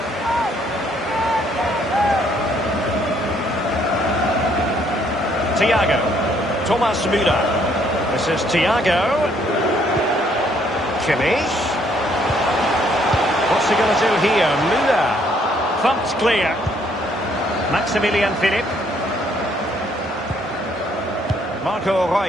Thiago. Thomas Müller. This is Thiago. Kimmich. What's he going to do here? Müller. Thumped clear. Maximilian Philipp. Marco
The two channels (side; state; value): both; normal; correlation 0.67